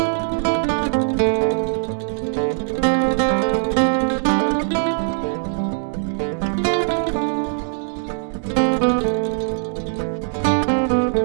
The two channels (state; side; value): silent; left; digital silence